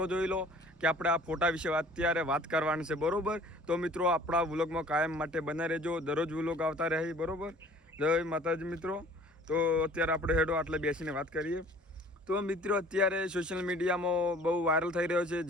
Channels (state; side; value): normal; both; correlation 0.51